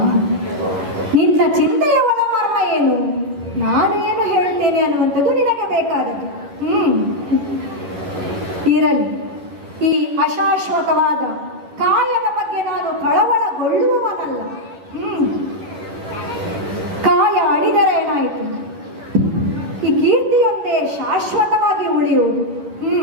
ನಿನ್ನ ಚಿಂತೆಯ ಒಳಮರ್ಮ ಏನು, ನಾನೇನು ಹೇಳ್ತೇನೆ ಅನ್ನುವಂಥದ್ದು ನಿನಗೆ ಬೇಕಾದದ್ದು. ಇರಲಿ, ಈ ಅಶಾಶ್ವತವಾದ ಕಾಯದ ಬಗ್ಗೆ ನಾನು ಕಳವಳಗೊಳ್ಳುವವನಲ್ಲ. ಕಾಯ ಅಡಿದರೆ ಏನಾಯಿತು? ಈ ಕೀರ್ತಿಯೊಂದೇ ಶಾಶ್ವತವಾಗಿ ಉಳಿಯುವುದು.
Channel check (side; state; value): left; late; 11 ms